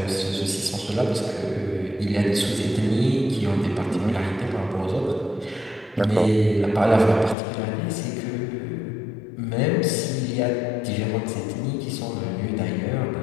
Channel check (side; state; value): right; drops out; at 7.4 s